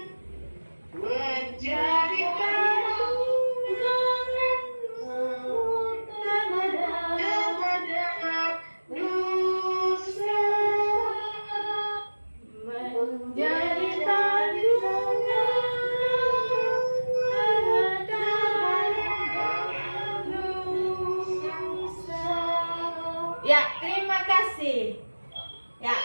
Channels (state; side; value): inverted; both; correlation -1.00